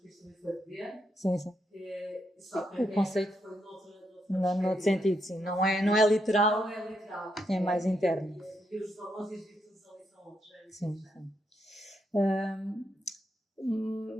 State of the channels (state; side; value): normal; both; correlation 0.80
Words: Cristo também foi ver. Sim. Só que o conceito foi noutro sentido, sim. Não é literal. Não é literal. É mais interno. E os valores e as virtudes ali são outros. Sim.